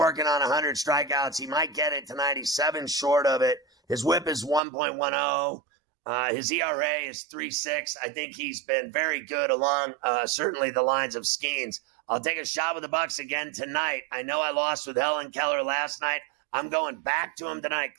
on 100 strikeouts. He might get it tonight. He's 7 short of it. His whip is 1.10. His ERA is 3.6. I think he's been very good along certainly the lines of Skeens. I'll take a shot with the Bucks again tonight. I know I lost with Helen Keller last night. I'm going back to him tonight.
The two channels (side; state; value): left; drops out; at 4.6 s